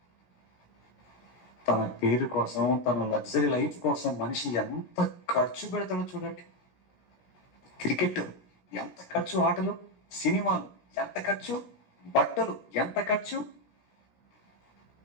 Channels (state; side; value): late; right; 17 ms